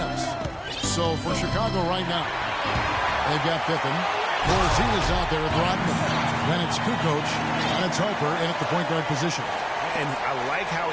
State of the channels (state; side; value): identical; both; correlation 1.00